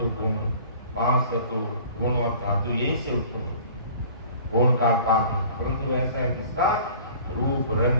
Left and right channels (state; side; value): inverted; both; correlation -0.47